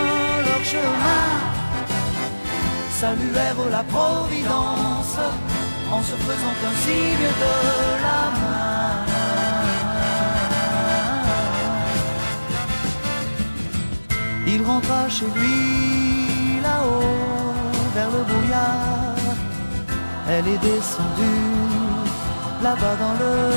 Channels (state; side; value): inverted; both; correlation -1.00